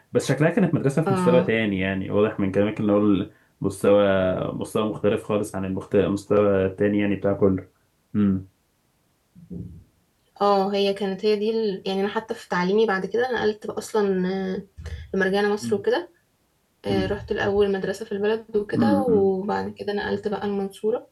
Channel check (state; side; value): identical; both; correlation 1.00